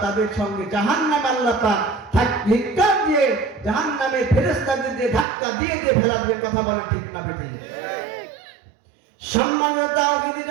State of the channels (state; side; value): drops out; left; at 5.2 s